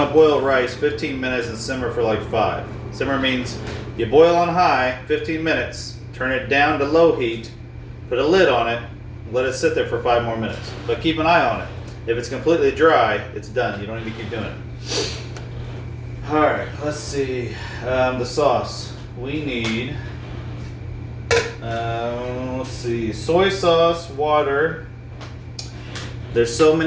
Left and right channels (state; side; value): identical; both; correlation 1.00